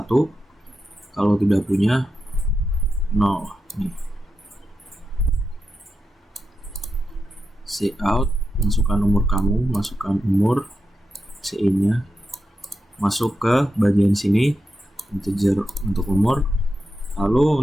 kalau tidak punya 0. Cout, masukkan umur kamu, masukkan umur, CI-nya, masuk ke bagian sini, integer untuk umur.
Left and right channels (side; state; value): both; normal; correlation 0.88